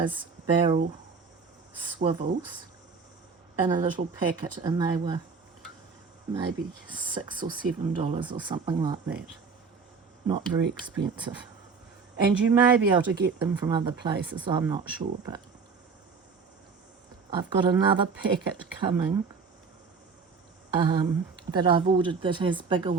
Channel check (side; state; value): left; quieter; 5.1 dB